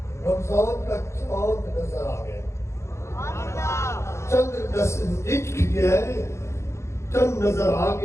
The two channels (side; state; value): right; late; 0.13 ms